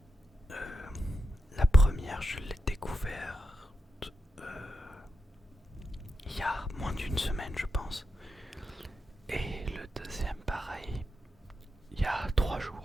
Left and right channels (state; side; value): normal; both; correlation 0.88